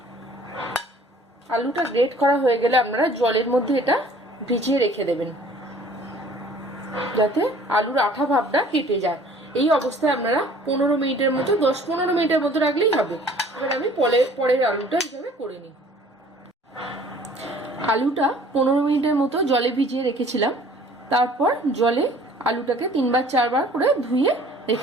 আলুটা গ্রেট করা হয়ে গেলে আপনারা জলের মধ্যে এটা ভিজিয়ে রেখে দেবেন যাতে আলুর আঠা ভাবটা কেটে যায়। এই অবস্থায় আপনারা 15 মিনিটের মতো 10-15 মিনিটের মতো রাখলেই হবে। এবার আমি পরের আলুটা এইভাবে করে নিই। আলুটা 15 মিনিটের মতো জলে ভিজিয়ে রেখেছিলাম। তারপর জলে আলুটাকে 3-4 বার করে ধুয়ে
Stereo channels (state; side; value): normal; both; correlation 0.52